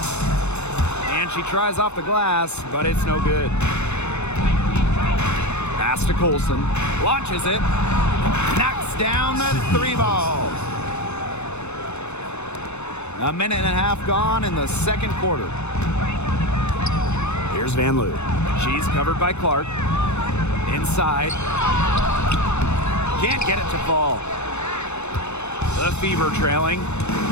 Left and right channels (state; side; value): late; right; 0.81 ms